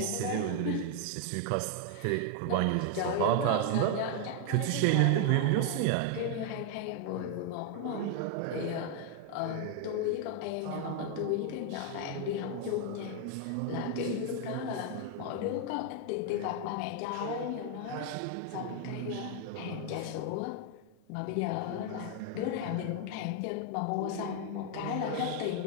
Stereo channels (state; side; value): different; both; correlation 0.00